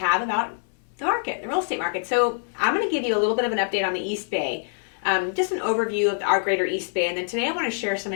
about the market, the real estate market. So I'm going to give you a little bit of an update on the East Bay, just an overview of our greater East Bay. And then today I want to share some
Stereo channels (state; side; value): silent; right; 62 dB below the other